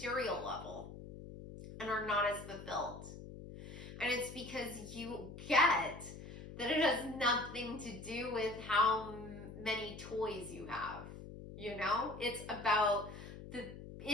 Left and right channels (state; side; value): noise; left; hum, 12 dB below the sound